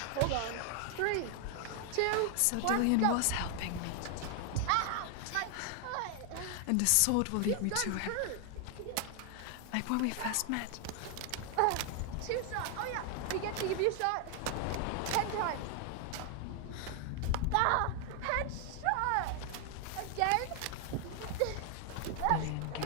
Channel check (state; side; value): different; both; correlation 0.00